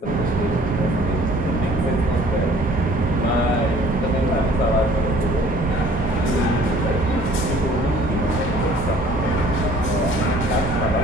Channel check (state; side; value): normal; both; correlation 0.54